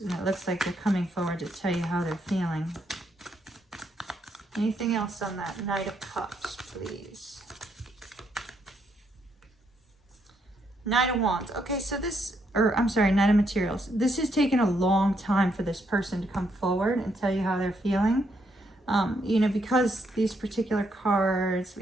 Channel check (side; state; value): both; normal; correlation 0.76